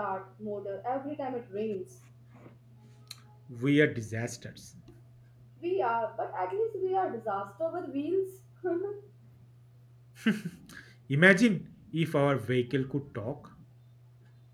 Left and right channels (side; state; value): both; identical; correlation 1.00